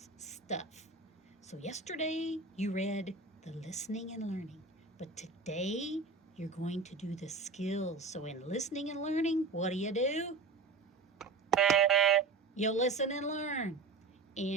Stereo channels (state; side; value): quieter; left; 4.1 dB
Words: Stuff. So, yesterday you read the listening and learning, but today you're going to do the skills. So, in listening and learning, what do? You listen and learn.